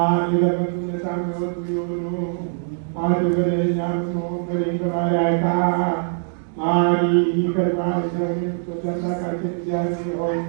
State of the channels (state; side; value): silent; left; digital silence